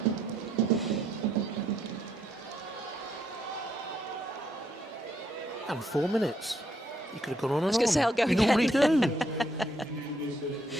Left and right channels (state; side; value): normal; both; correlation 0.73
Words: And 4 minutes. You could have gone on and on. I was going to say, I'll go you again. normally do.